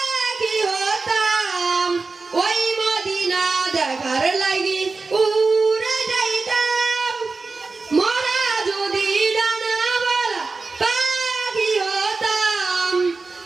হতাম ওই মদিনা দেখার লাগি উড়ে যাইতাম মোরা যদি ডানাওয়ালা পাখি হতাম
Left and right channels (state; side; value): quieter; left; 4.0 dB